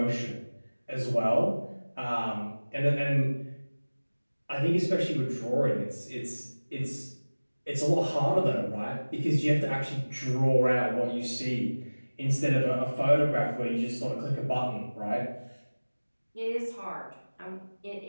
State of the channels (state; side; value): inverted; both; correlation -1.00